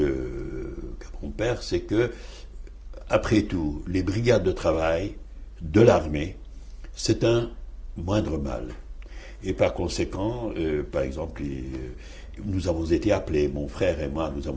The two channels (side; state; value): both; identical; correlation 1.00